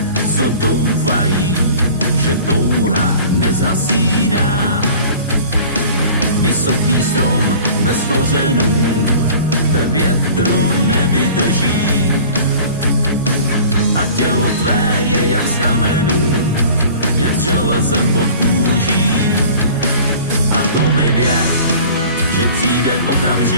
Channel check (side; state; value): both; inverted; correlation -0.44